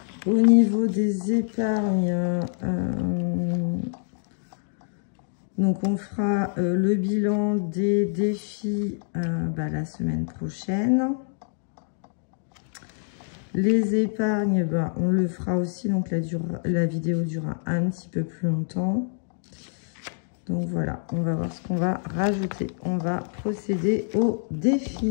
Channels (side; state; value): right; silent; digital silence